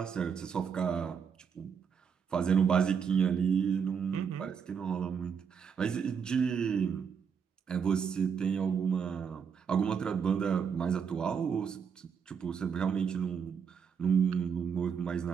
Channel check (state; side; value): quieter; left; 6.8 dB